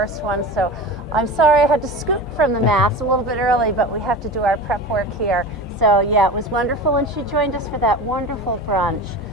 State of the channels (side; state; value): both; normal; correlation 0.31